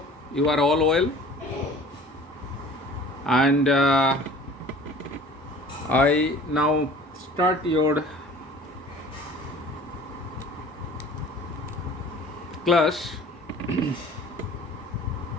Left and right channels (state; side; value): normal; both; correlation 0.46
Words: you are all well. And I now start your class